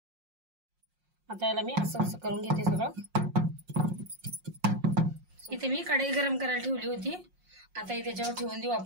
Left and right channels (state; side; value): late; left; 5.6 ms